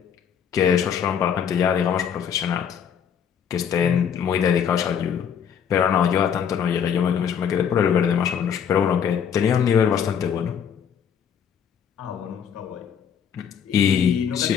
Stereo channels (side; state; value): right; quieter; 8.0 dB